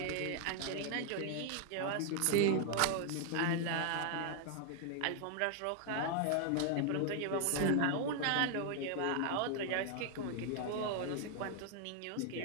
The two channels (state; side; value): different; both; correlation 0.00